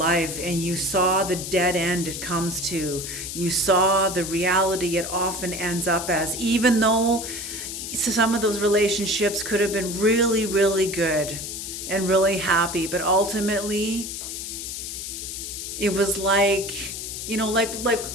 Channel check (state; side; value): noise; left; hiss, 7 dB below the sound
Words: and you saw the dead end it comes to. You saw the reality it often ends up as, even though some of those relationships could have been really, really good and really happy, but ultimately it was like,